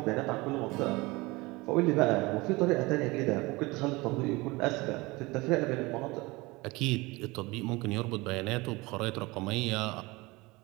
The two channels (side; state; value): left; quieter; 23.0 dB